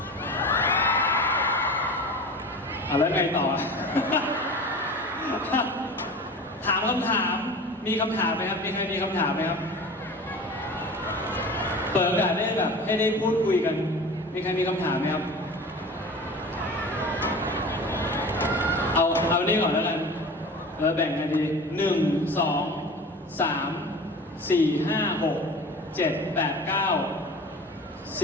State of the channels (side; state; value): both; normal; correlation 0.36